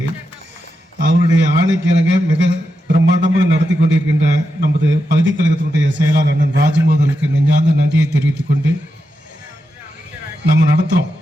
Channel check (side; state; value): both; normal; correlation 0.87